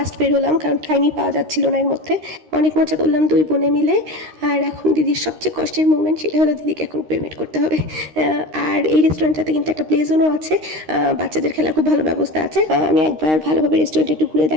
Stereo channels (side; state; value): left; late; 13 ms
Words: বের হলাম, কারণ টাইমই পাওয়া যাচ্ছিল না এর মধ্যে। অনেক মজা করলাম দুই বোনে মিলে। আর এখন দিদির সবচেয়ে কষ্টের মুভমেন্ট, সেটা হলো দিদিকে এখন পেমেন্ট করতে হবে। আর এই রেস্টুরেন্টটাতে কিন্তু একটা প্লে জোনও আছে, বাচ্চাদের খেলার খুব ভালো ব্যবস্থা আছে। আমি একবার ভালোভাবে রেস্টুরেন্টে একটু ঘুরে